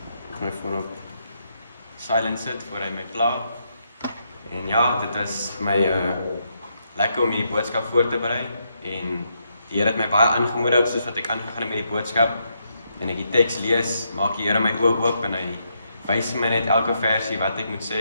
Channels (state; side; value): inverted; both; correlation -0.79